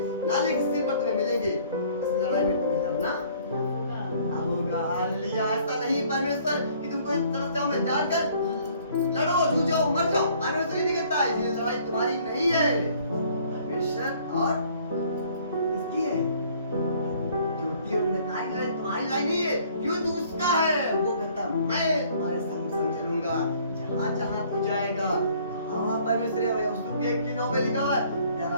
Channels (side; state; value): both; inverted; correlation -0.58